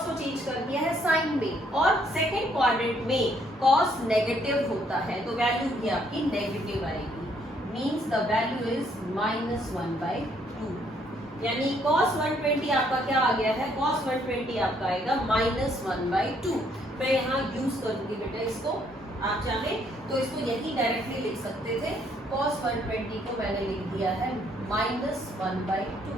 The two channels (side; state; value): both; normal; correlation 0.68